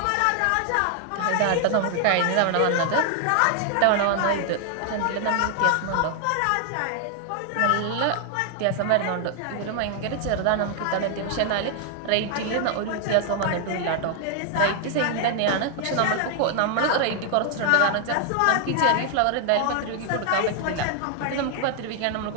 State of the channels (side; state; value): both; different; correlation 0.00